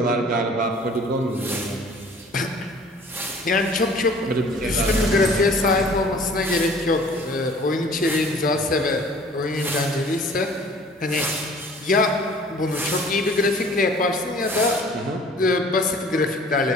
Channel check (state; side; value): normal; both; correlation 0.51